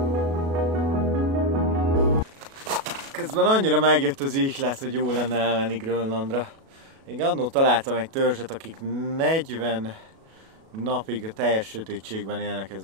Közben annyira megjött az ihlet, hogy jó lenne elmenni Grönlandra. Én annól találtam egy törzset, akik 40 napig a teljes sötétségben élnek, ez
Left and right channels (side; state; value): left; late; 37 ms